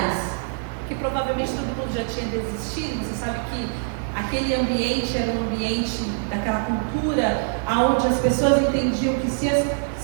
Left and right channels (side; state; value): left; silent; digital silence